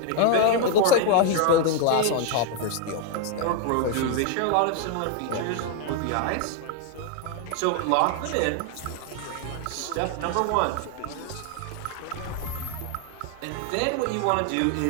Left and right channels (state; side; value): different; both; correlation 0.01